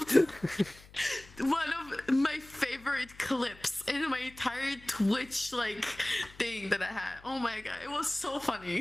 One of my favorite clips in my entire Twitch like thing that I had. Oh my god, it was so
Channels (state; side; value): noise; left; hum, 22 dB below the sound